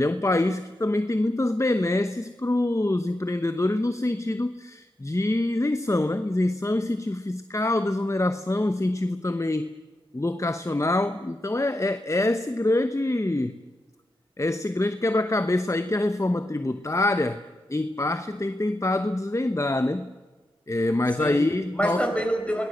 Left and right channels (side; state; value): both; normal; correlation 0.87